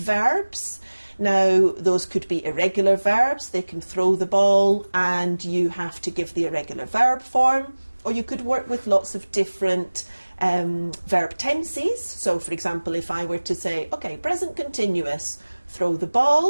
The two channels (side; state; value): both; inverted; correlation -1.00